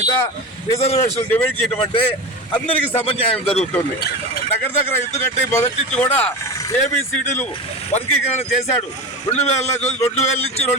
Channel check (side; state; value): both; normal; correlation 0.26